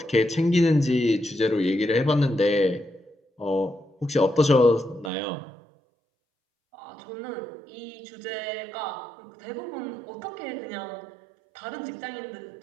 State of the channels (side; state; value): left; drops out; at 5.1 s